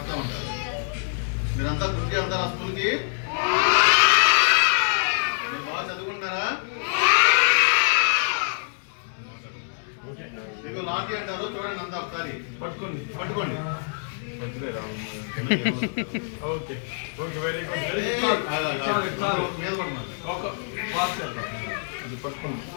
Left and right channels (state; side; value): silent; right; 62 dB below the other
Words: ఉంటారు. మీరంతా గుర్తి వెళ్తారు ఆ స్కూల్కి? మీరు బాగా చదువుకుంటున్నారా? మీకు లాఠీ అంటారు, చూడండి అంతా ఒకసారి పట్టుకోండి పట్టుకోండి. ఓకే ఓకే వెరీ గుడ్ మీద పట్టుకోండి